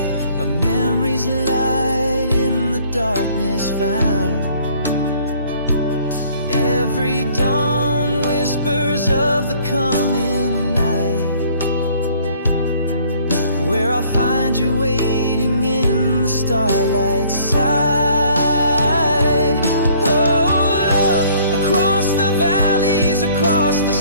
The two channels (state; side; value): inverted; both; correlation -0.58